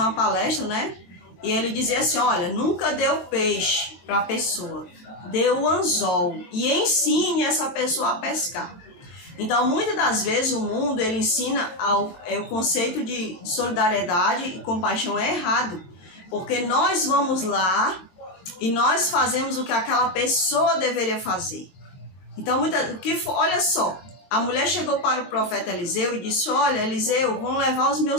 uma palestra, né? E ele dizia assim: olha, nunca dê o peixe para a pessoa, dê o anzol e ensine essa pessoa a pescar. Então, muitas das vezes o mundo ele ensina o conceito de solidariedade e compaixão é errado, porque nós vamos lá e nós fazemos o que aquela pessoa deveria fazer. Então, olha só, a mulher chegou para o profeta Eliseu e disse: olha, Eliseu, vão levar os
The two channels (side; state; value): right; late; 23 ms